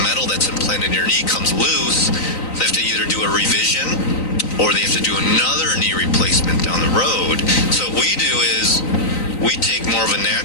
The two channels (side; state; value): right; late; 3.9 ms